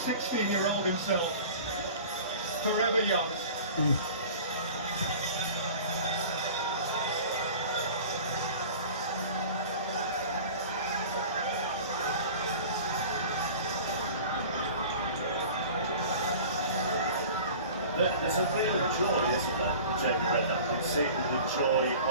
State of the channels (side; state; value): both; inverted; correlation -0.40